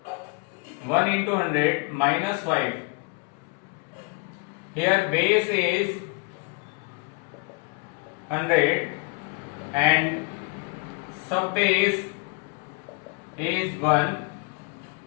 1 into 100 minus 5. Here base is 100 and subbase is 1.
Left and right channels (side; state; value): right; quieter; 30.7 dB